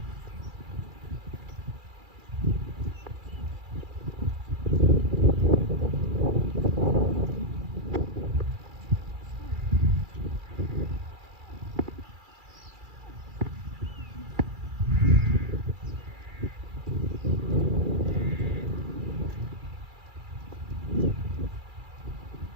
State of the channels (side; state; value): left; late; 2.4 ms